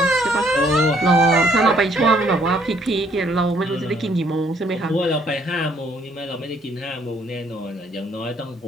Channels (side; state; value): both; normal; correlation 0.66